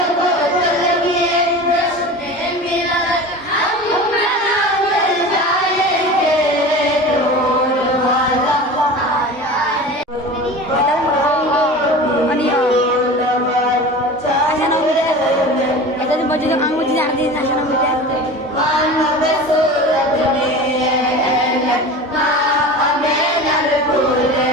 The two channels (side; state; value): both; normal; correlation 0.34